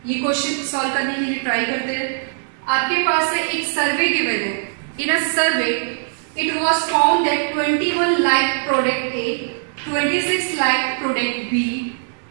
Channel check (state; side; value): silent; left; 59 dB below the other